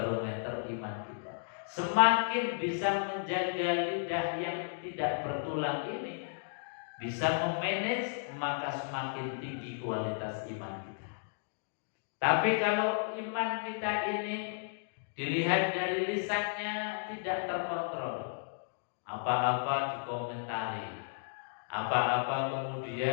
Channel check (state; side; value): silent; right; digital silence